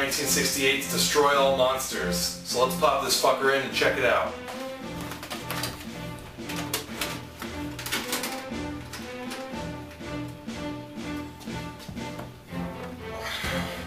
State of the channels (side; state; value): both; identical; correlation 1.00